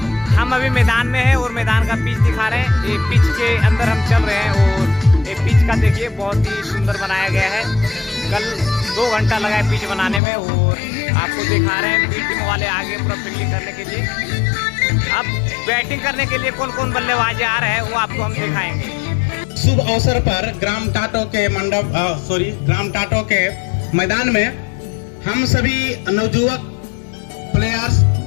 हम अभी मैदान में हैं और मैदान का पिच दिखा रहे हैं। ये पिच के अंदर हम चल रहे हैं और ये पिच का देखिए बहुत ही सुंदर बनाया गया है। कल 2 घंटा लगा है पिच बनाने में और आपको दिखा रहे हैं बी टीम वाले आगे पूरा फील्डिंग करने के लिए। अब बैटिंग करने के लिए कौन कौन बल्लेबाज आ रहे हैं वो आपको हम दिखाएंगे। शुभ अवसर पर ग्राम टाटो के मैदान में हम सभी नवयुवक प्लेयर्स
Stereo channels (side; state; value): right; drops out; at 10.2 s